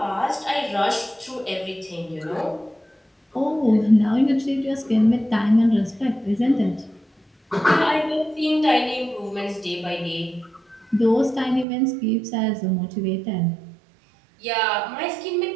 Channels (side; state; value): left; drops out; at 11.7 s